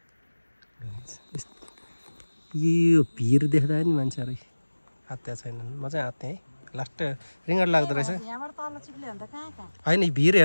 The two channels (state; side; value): inverted; both; correlation -1.00